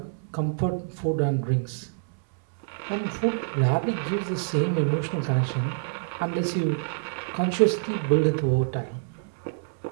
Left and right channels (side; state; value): left; silent; 59 dB below the other